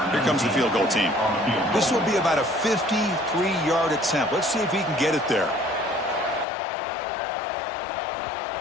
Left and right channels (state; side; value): drops out; right; at 6.5 s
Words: Here comes the field goal team. This will be about a 53-yard attempt. Let's see if he can get it there.